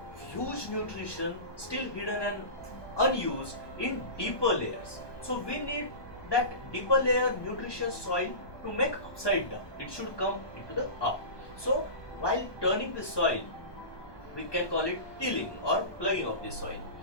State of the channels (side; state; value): right; late; 1.1 ms